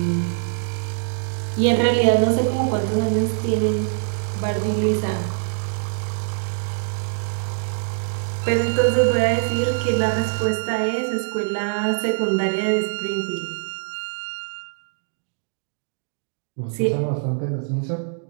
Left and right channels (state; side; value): silent; left; 61 dB below the other